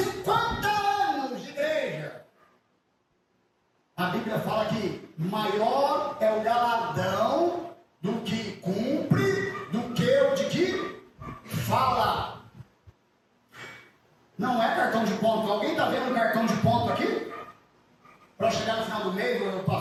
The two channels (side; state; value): both; identical; correlation 1.00